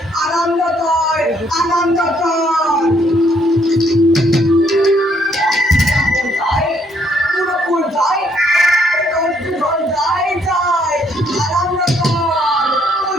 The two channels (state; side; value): normal; both; correlation 0.69